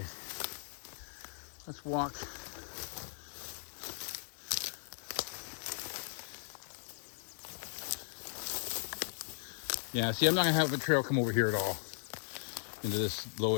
let's walk. Yeah, see, I'm not gonna have a trail come over here at all into this low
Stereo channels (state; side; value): silent; right; digital silence